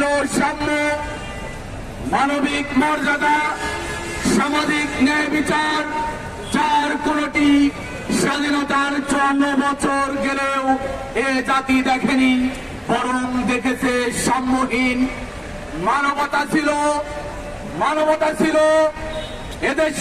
সাম্য, মানবিক মর্যাদা, সামাজিক ন্যায় বিচার, যার কোনটি স্বাধীনতার 54 বছর গেলেও এ জাতি দেখেনি, বরং দেখেছে সাম্যহীন। মানবতা ছিল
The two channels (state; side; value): identical; both; correlation 1.00